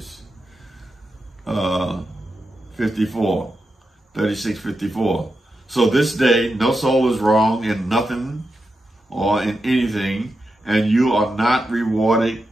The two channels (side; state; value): both; normal; correlation 0.88